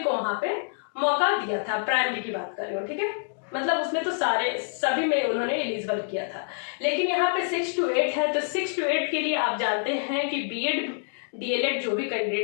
वहां पे मौका दिया था। प्राइमरी की बात कर रही हूँ, ठीक है, मतलब उसमें तो सभी में उन्होंने एलिजिबल किया था। लेकिन यहाँ पे 6 to 8 है, तो 6 to 8 के लिए आप जानते हैं कि बीएड डीएलएड जो भी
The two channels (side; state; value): right; silent; digital silence